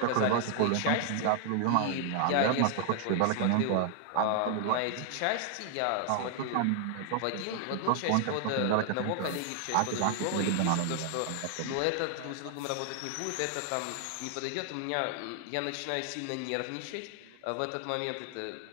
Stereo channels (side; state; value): both; different; correlation 0.00